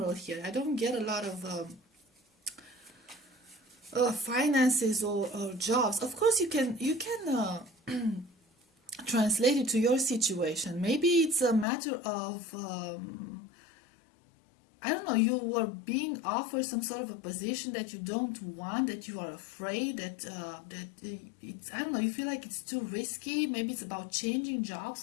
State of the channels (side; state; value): right; drops out; at 11.7 s